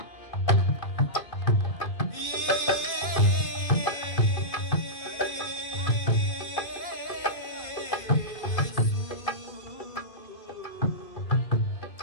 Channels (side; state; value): right; late; 2.5 ms